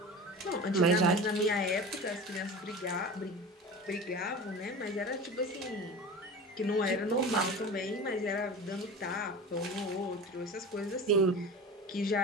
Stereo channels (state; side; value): normal; both; correlation 0.33